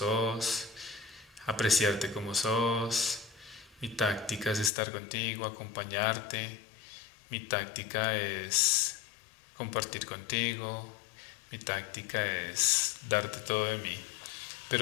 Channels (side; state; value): right; drops out; at 4.7 s